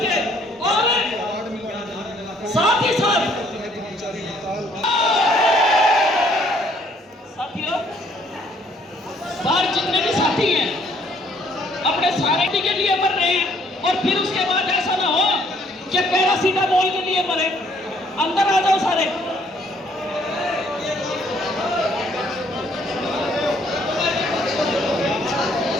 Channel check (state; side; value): normal; both; correlation 0.64